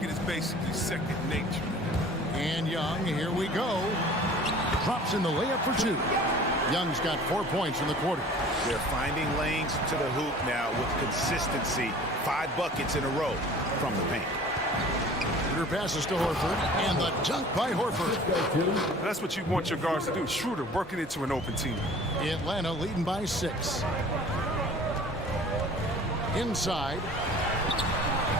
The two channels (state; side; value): normal; both; correlation 0.46